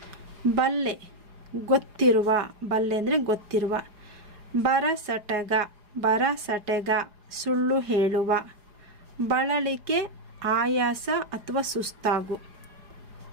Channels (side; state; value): left; late; 4.9 ms